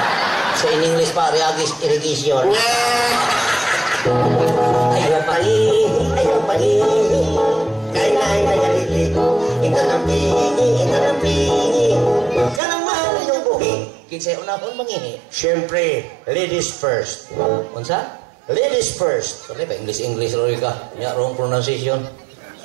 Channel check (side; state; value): left; drops out; at 12.6 s